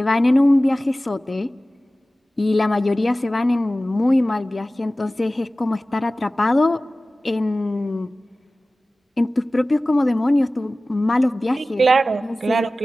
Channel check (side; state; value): both; normal; correlation 0.96